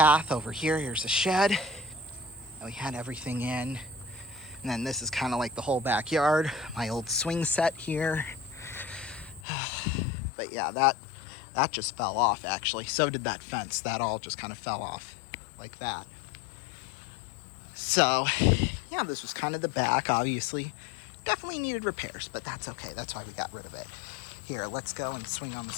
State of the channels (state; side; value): drops out; right; at 9.4 s